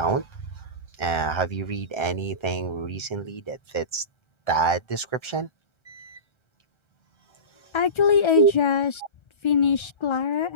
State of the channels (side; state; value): right; late; 1.3 ms